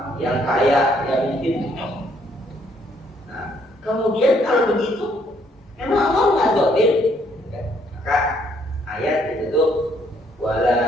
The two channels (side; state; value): both; normal; correlation 0.68